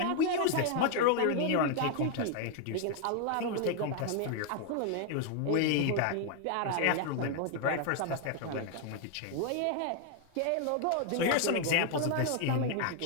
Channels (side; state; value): both; different; correlation 0.00